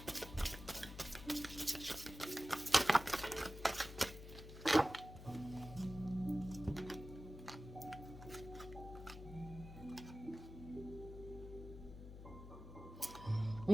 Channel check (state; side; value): noise; left; hum, 13 dB below the sound